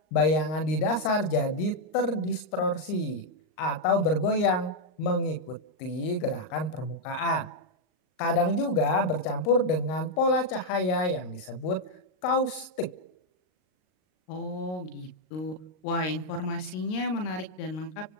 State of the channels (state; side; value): late; right; 38 ms